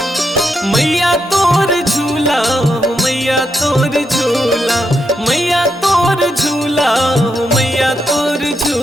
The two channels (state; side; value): normal; both; correlation 0.82